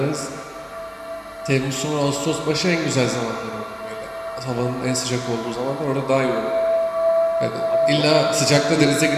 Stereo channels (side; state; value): both; identical; correlation 1.00